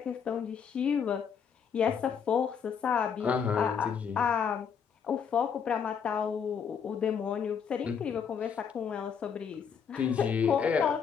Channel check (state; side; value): quieter; right; 7.0 dB